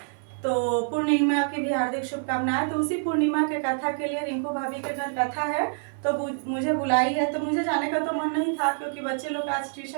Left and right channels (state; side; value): silent; left; 61 dB below the other